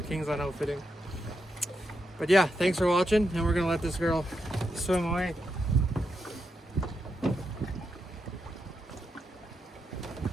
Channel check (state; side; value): normal; both; correlation 0.84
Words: Kingsland Outfitting. But yeah, thanks for watching, and we're gonna let this girl swim away.